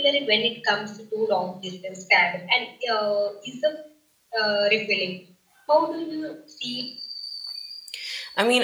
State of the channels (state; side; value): identical; both; correlation 1.00